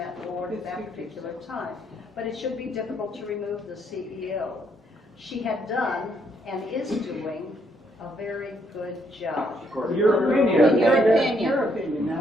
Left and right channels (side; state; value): both; normal; correlation 0.72